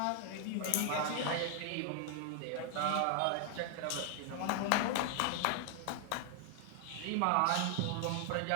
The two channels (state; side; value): different; both; correlation 0.00